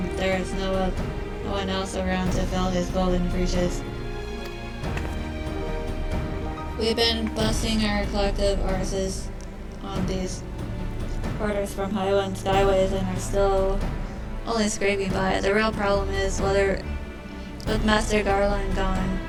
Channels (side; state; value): both; identical; correlation 1.00